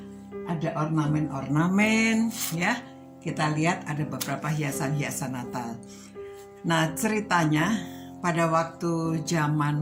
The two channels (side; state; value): both; identical; correlation 1.00